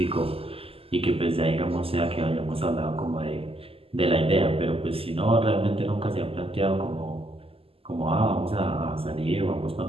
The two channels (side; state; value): left; late; 0.28 ms